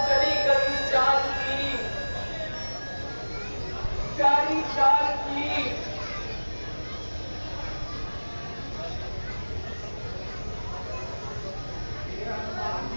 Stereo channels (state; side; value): inverted; both; correlation -1.00